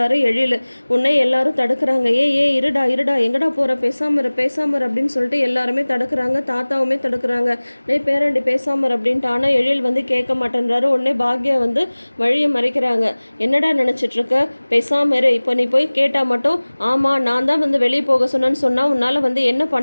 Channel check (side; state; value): both; inverted; correlation -1.00